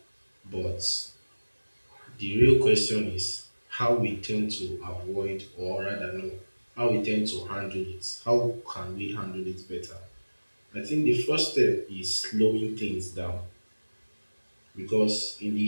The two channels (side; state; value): both; inverted; correlation -1.00